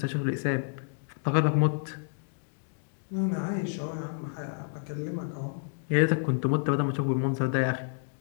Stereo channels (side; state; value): right; silent; digital silence